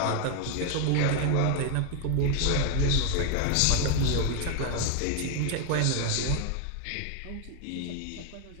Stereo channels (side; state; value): both; different; correlation 0.01